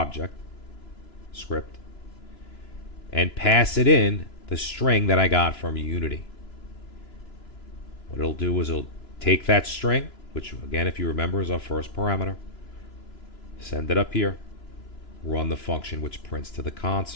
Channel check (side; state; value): right; late; 2.9 ms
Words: script, and pass it in the string that I got from Unity. What it'll do is it'll take that string, which again, if you remember, is our first parameter, send it up here, run the function which prints to the